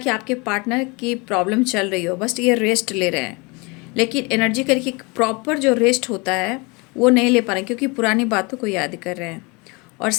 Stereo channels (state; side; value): quieter; right; 28.2 dB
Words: आपके पार्टनर की प्रॉब्लम चल रही हो, बस ये रेस्ट ले रहे हैं, लेकिन एनर्जी करके प्रॉपर जो रेस्ट होता है वो नहीं ले पा रहे हैं, क्योंकि पुरानी बातों को याद कर रहे हैं। और